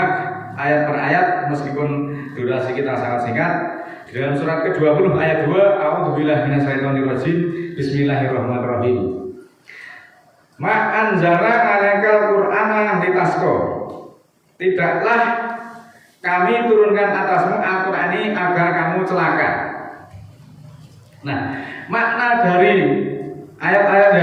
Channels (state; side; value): identical; both; correlation 1.00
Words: ayat per ayat meskipun durasi kita sangat singkat. Di dalam surat ke-20 ayat 2, A'udzubillahi minasyaitonirrajim. Bismillahirrahmanirrahim. Ma anzalna 'alaikal Qur'ana litasqa. Tidaklah kami turunkan atasmu Al-Qur'an ini agar kamu celaka. Nah, makna dari ayat-ayat